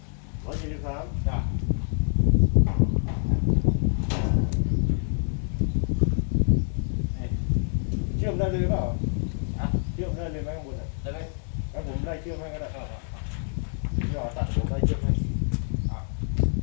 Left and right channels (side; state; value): right; silent; 55 dB below the other